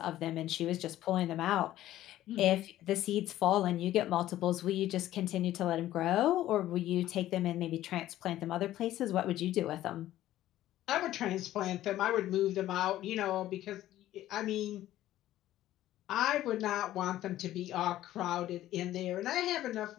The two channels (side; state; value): right; quieter; 13.9 dB